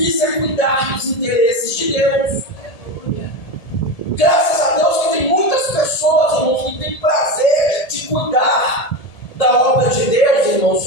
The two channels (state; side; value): late; right; 1.8 ms